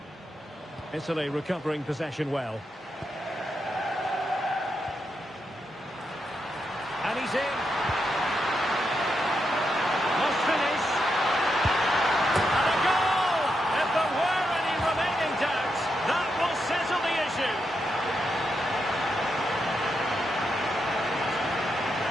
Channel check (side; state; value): both; normal; correlation 0.83